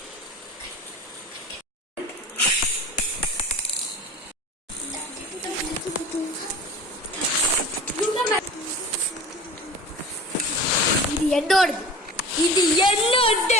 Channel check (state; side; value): normal; both; correlation 0.37